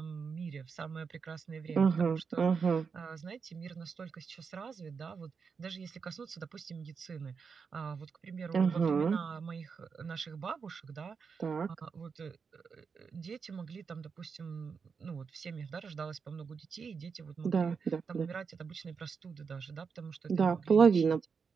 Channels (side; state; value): left; quieter; 5.7 dB